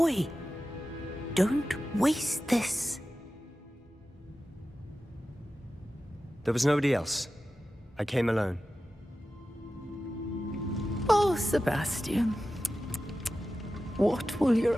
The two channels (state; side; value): normal; both; correlation 0.94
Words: Don't waste this. There was nobody else. I came alone. Oh, Sebastian. What will